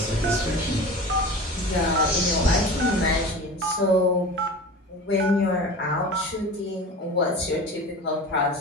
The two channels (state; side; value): normal; both; correlation 0.34